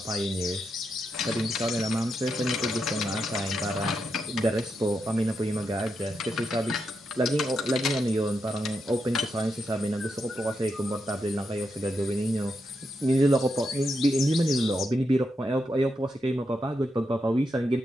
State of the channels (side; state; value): both; normal; correlation 0.84